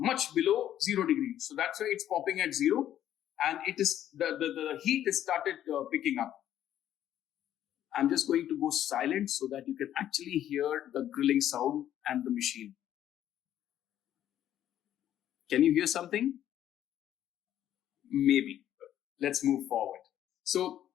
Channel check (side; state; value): right; quieter; 11.4 dB